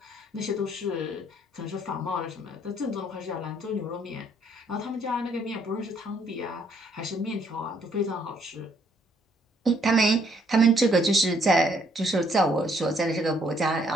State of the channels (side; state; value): both; normal; correlation 0.67